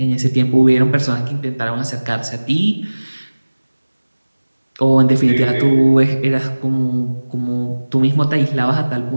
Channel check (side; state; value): both; inverted; correlation -1.00